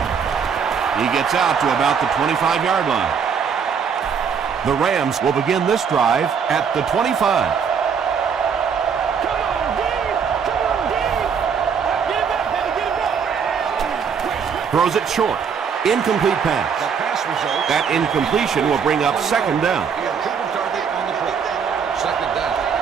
He gets out to about the 25-yard line. The Rams will begin this drive at the 25. Throws it short. Incomplete pass. That incompletion will bring up second down.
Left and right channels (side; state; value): left; quieter; 6.6 dB